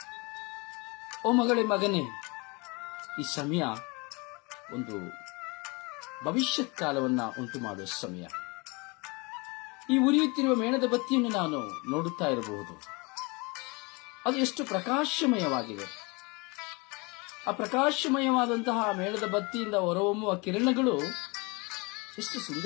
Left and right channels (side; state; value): right; quieter; 27.9 dB